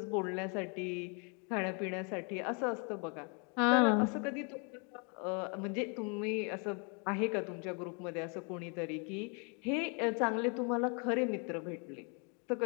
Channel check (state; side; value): quieter; right; 36.8 dB